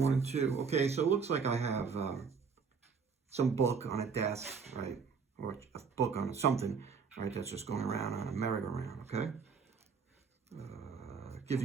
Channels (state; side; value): quieter; left; 5.7 dB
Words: 1 and 2. Okay, so it looks like I have some book on a desk, right? Or a book on something, right? That's just going around on a merry-go-round, okay? Give